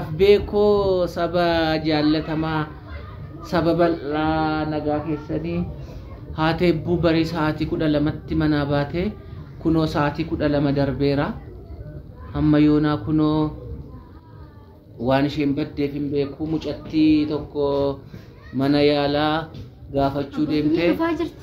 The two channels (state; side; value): identical; both; correlation 1.00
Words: beekoo saba jaallatamaa saba bal'aa nagaa keessanii haati eebbuu barii sa'aatii 12tti manaa baate kunoo sa'aatii 12 darbeera amma yoonaa kunoo waan isheen baddeef hin beeku mucattii tokko mana yaalaa gaafachuu deemtee